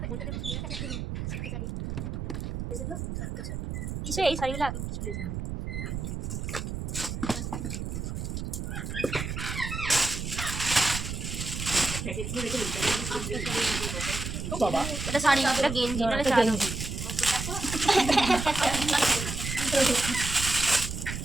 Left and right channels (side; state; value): right; noise; rumble, 5 dB below the sound